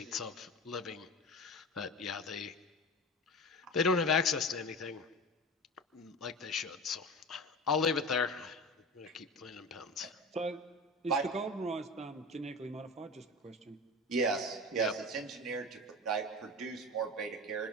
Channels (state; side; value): normal; both; correlation 0.30